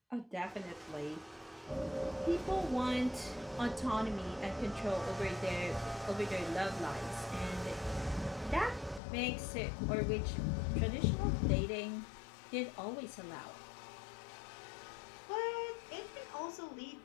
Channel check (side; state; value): right; drops out; at 9.0 s